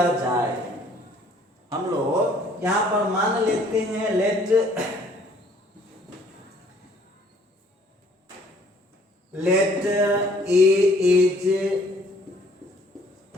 जाए, हम लोग यहां पर मान लेते हैं, late A is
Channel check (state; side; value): normal; both; correlation 0.59